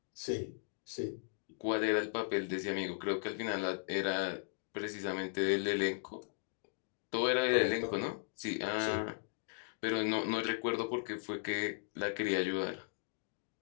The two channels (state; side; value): silent; right; digital silence